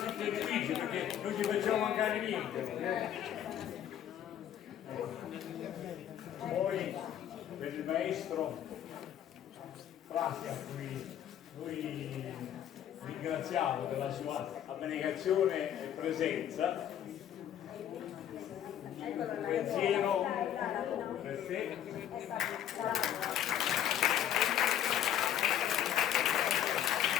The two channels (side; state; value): right; quieter; 10.5 dB